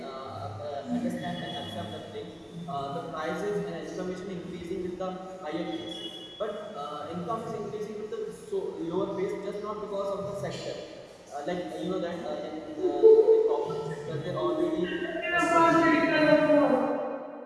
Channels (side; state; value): both; identical; correlation 1.00